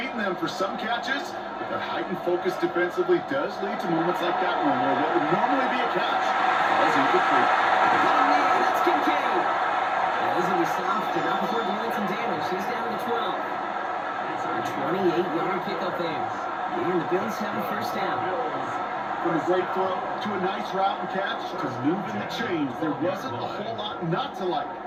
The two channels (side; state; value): both; identical; correlation 1.00